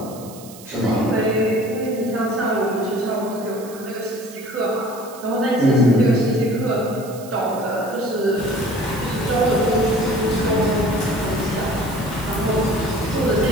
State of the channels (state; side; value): noise; right; hiss, 18 dB below the sound